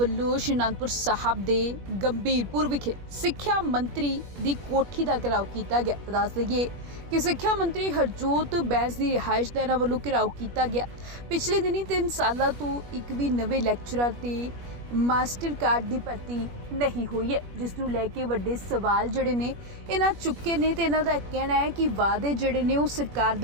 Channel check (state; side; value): late; left; 21 ms